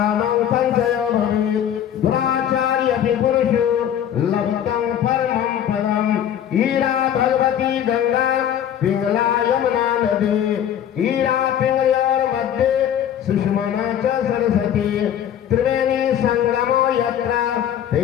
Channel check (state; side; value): quieter; right; 10.0 dB